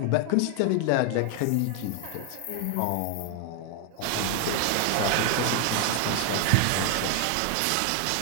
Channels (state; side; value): different; both; correlation 0.01